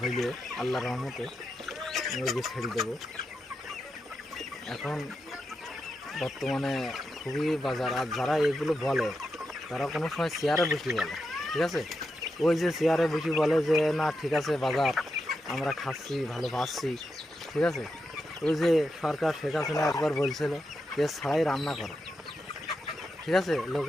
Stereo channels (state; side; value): normal; both; correlation 0.87